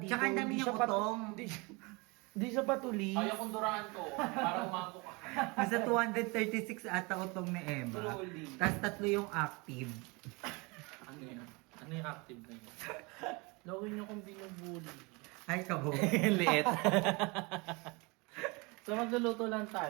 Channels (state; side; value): quieter; left; 27.5 dB